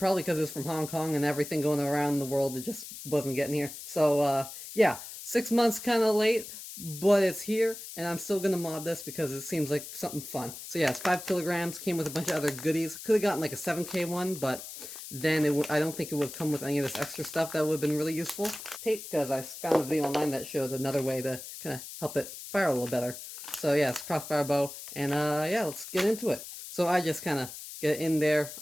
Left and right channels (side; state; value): left; noise; hiss, 11 dB below the sound